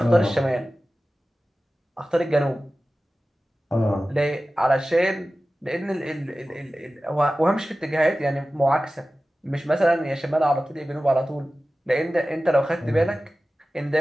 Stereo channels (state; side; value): normal; both; correlation 0.95